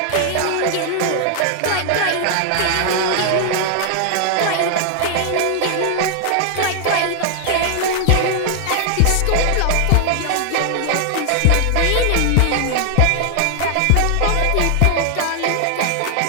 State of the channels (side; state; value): both; different; correlation 0.00